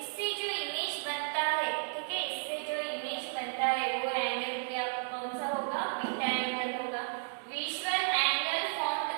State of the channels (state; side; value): silent; left; digital silence